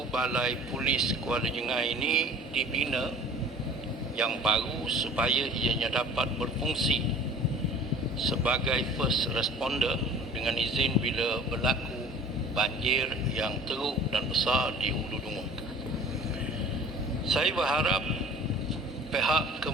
balai polis Kuala Jengai ini dibina yang baru supaya ianya dapat berfungsi sebagai first responder dengan izin bila berlaku banjir yang teruk dan besar di Ulu Dungun. Saya berharap pihak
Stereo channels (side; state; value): both; normal; correlation 0.45